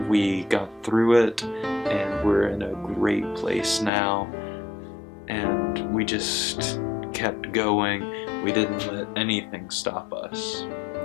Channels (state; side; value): drops out; right; at 3.9 s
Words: we got through it, and we're in a great place now, and we just kept going. We didn't let anything stop us,